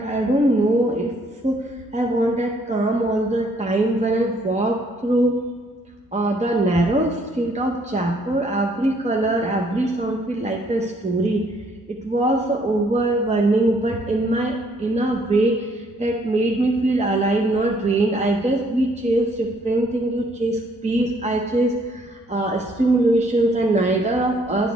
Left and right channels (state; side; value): normal; both; correlation 0.65